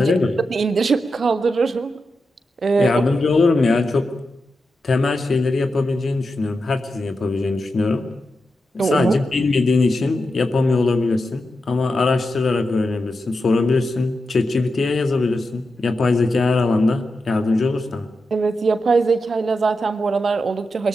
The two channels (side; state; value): both; normal; correlation 0.88